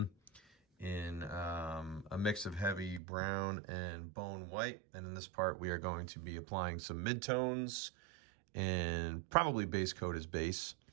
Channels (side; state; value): left; drops out; at 3.0 s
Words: in a mix of heavy brown and bone white. And in this part, we are going to be applying some midtones and probably base coat his base.